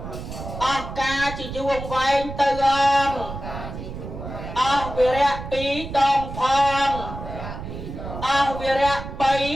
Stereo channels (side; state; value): right; noise; rumble, 9 dB below the sound